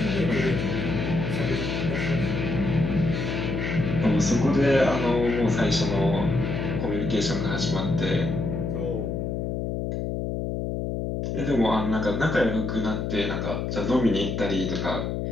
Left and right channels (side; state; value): left; noise; hum, 2 dB below the sound